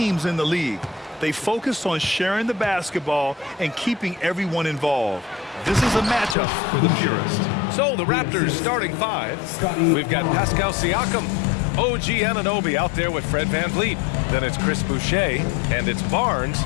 in the league. They focus on sharing the basketball and keeping everyone involved. This is a matchup for the purist. So the Raptors starting five. We've got Pascal Siakam, OG Anunoby out there with Fred VanVleet. Then it's Chris Boucher, and it's Barnes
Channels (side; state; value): right; drops out; at 6.4 s